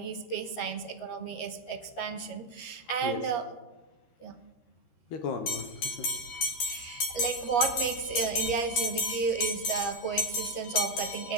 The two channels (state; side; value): late; right; 13 ms